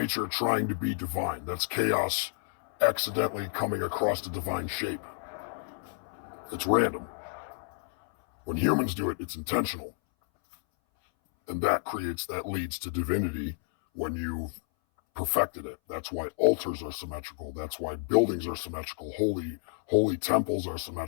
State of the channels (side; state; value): right; silent; 58 dB below the other